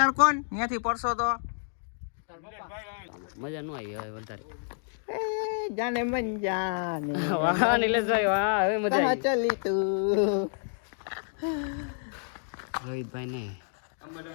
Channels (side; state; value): right; silent; digital silence